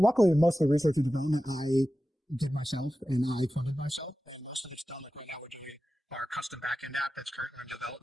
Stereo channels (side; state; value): both; normal; correlation 0.94